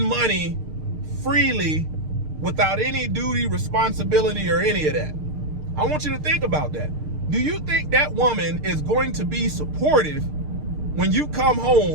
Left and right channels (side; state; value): left; late; 6.6 ms